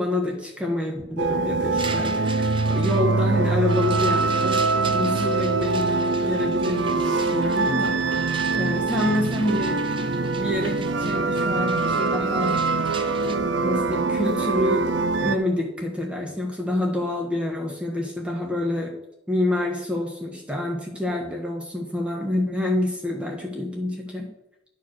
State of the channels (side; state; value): both; normal; correlation 0.39